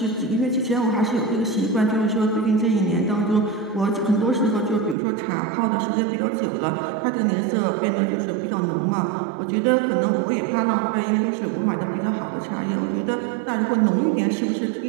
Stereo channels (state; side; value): drops out; left; at 5.0 s